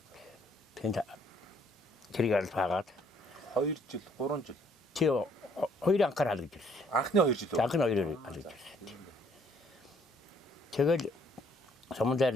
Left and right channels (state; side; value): normal; both; correlation 0.64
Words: Тэнд Цэргийн алт хаагаад 2 жил, 3 жил. Тий 2 анхаар хаалгаж ирсэн. Анхны 2 жил. Анхны 2 хаалгаж ирсэн. Тэгэл